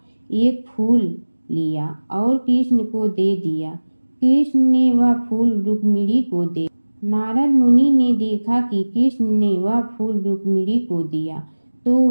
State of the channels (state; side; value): inverted; both; correlation -1.00